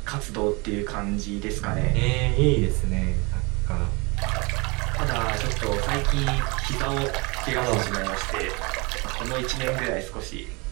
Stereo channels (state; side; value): quieter; left; 27.9 dB